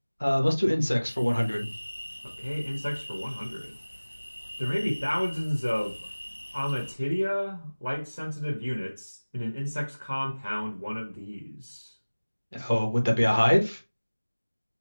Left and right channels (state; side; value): inverted; both; correlation -1.00